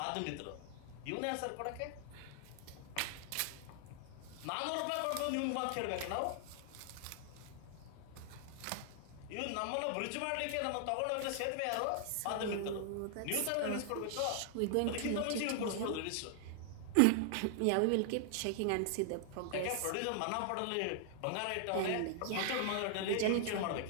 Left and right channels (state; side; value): different; both; correlation 0.00